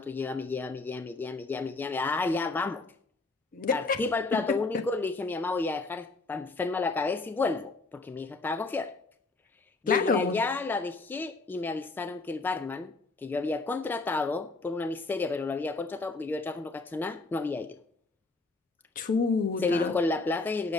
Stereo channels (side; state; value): right; quieter; 3.5 dB